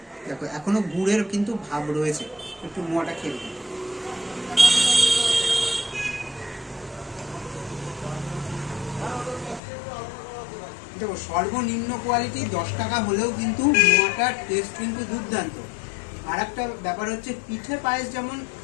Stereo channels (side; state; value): right; drops out; at 9.6 s